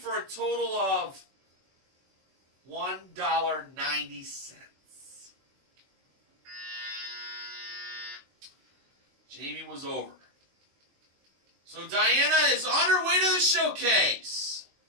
a total of $1.90. Jamie was over. So Diana is on her way to the showcase.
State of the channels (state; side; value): late; left; 21 ms